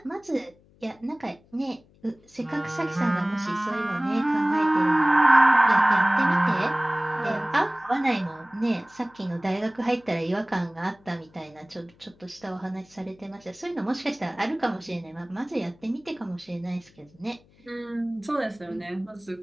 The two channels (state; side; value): noise; left; hum, 30 dB below the sound